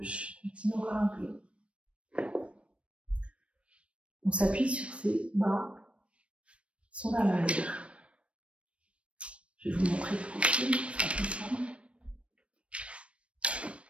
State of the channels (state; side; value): late; left; 0.061 ms